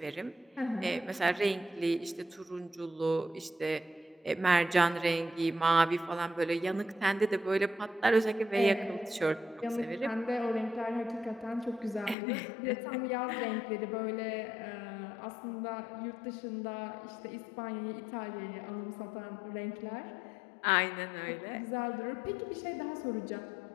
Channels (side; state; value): right; drops out; at 12.2 s